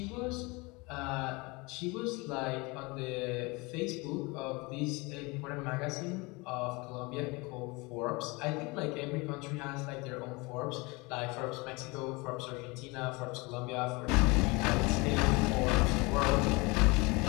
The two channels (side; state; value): right; quieter; 26.0 dB